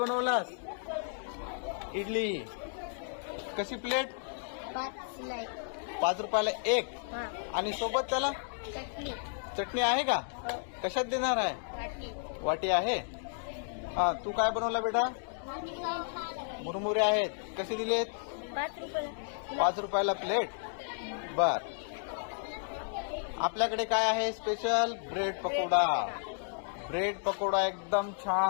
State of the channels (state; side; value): silent; right; digital silence